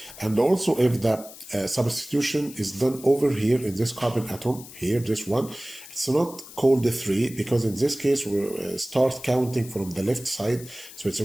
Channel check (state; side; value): noise; left; hiss, 17 dB below the sound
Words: And also if the substitution is done over here in this carbon atom, here, this one, it's not called 3, because in this case we start counting from the left side, so it's